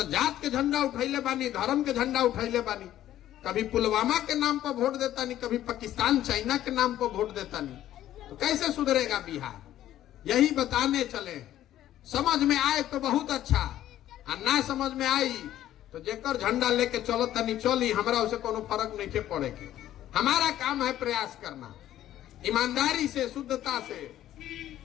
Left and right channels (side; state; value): right; quieter; 12.7 dB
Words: जात के झंडा उठैले बानी, धर्म के झंडा उठैले बानी। कभी पुलवामा के नाम पर वोट देता नहीं, कभी पाकिस्तान चाइना के नाम पर वोट देता नहीं। तो कैसे सुधरेगा बिहार? यही बताने चले। समझ में आए तो बहुत अच्छा, और ना समझ में आई तो जेकर झंडा लेके चलो तनी चली, हमरा उसे कोनो फर्क नहीं के पड़ेगी। हमारा काम है प्रयास करना, ईमानदारी से, शुद्धता से।